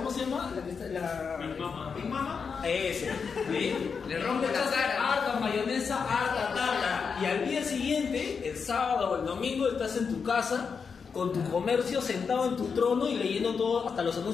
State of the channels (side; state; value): right; quieter; 5.8 dB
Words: se llama? Big Mama. Ese. ¿Sí? Le rompe la cara. Harta mayonesa, harta tarta. Y al día siguiente, el sábado o el domingo, estás en tu casa con tu comercio sentado en tu trono y leyendo todo, hasta los